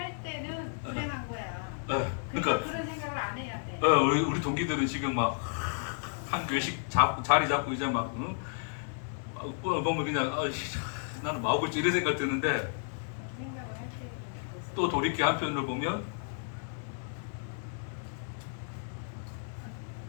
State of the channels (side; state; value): right; silent; digital silence